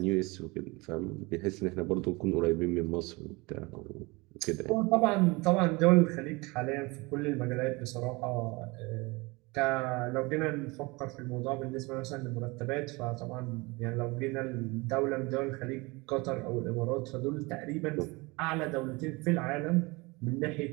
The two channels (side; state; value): left; quieter; 25.1 dB